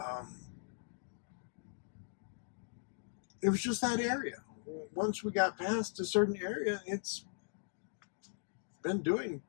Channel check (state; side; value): silent; right; digital silence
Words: It was just that area. Once we got past a certain area, it's been doing